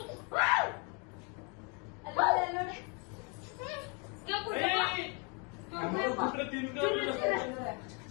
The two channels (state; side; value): quieter; right; 34.5 dB